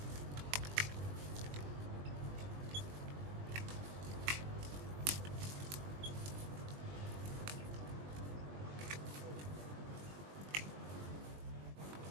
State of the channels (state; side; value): late; left; 20 ms